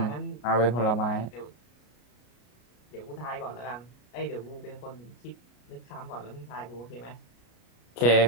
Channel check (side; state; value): right; late; 33 ms